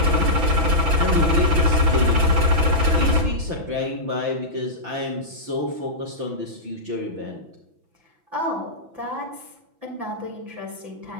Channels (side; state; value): left; late; 5.9 ms